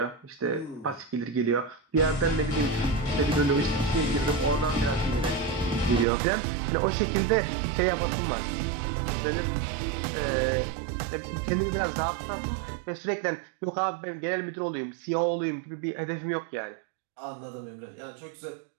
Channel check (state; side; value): drops out; left; at 6.1 s